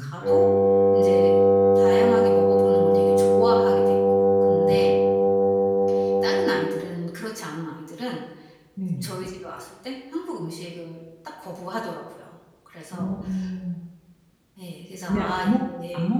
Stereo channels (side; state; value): both; identical; correlation 1.00